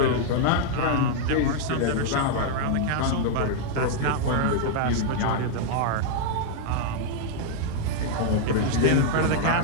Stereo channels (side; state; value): both; different; correlation -0.01